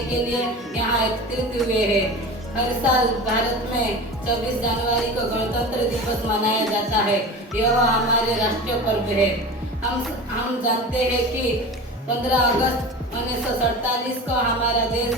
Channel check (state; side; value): normal; both; correlation 0.32